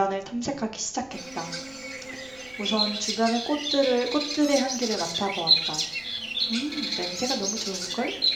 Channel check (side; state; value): right; noise; rumble, 26 dB below the sound